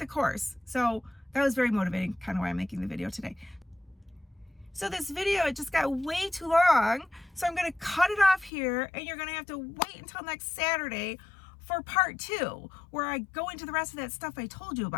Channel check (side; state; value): right; drops out; at 8.5 s